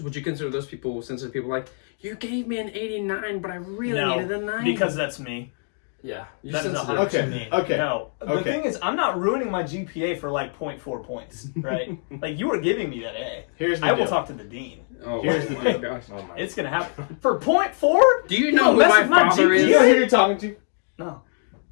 Would you consider those people sensitive people? Like, you gave me an 89, but I really needed a 9. because that's me. Yeah. You're That is sensitive. 100% Okay, me. okay, No, the okay. thing is, I'm not ruining my GPA for like 0.4 points, right? Like you were giving me that A. Here's the I will deal. talk to the dean. Oh, Here's the my deal. gosh. Oh my. It's gonna happen for 0.4. Do you know who mess my with my father Do is? you know who you're talking to? No.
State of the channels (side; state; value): right; silent; 63 dB below the other